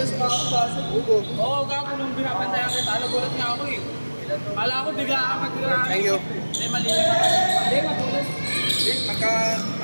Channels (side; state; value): both; inverted; correlation -1.00